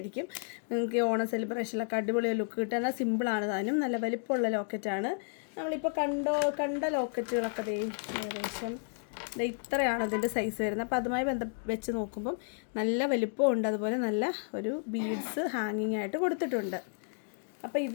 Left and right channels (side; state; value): right; silent; 56 dB below the other